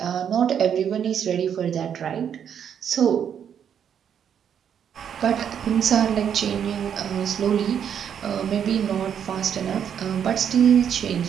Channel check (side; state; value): left; quieter; 8.4 dB